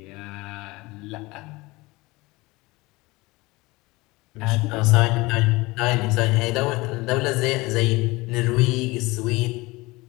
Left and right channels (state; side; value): quieter; right; 22.2 dB